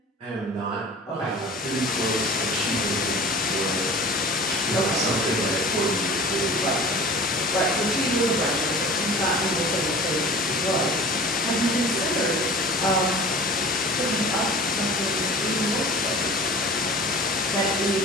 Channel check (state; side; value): normal; both; correlation 0.41